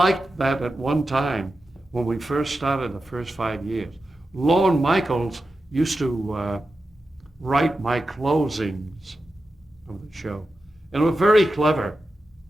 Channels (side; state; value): both; normal; correlation 0.91